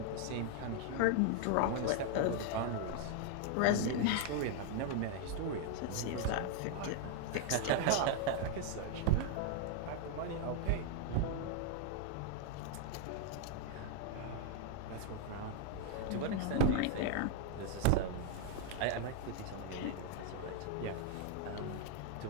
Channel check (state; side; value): different; both; correlation 0.00